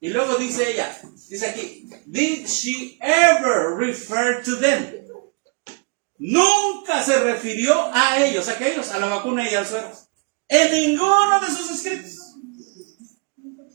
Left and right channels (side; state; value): left; quieter; 35.0 dB